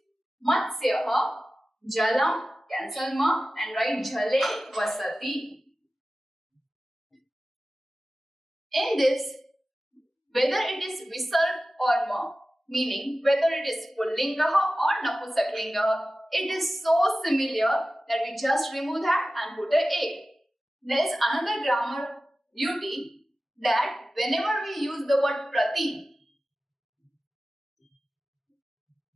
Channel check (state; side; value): normal; both; correlation 0.95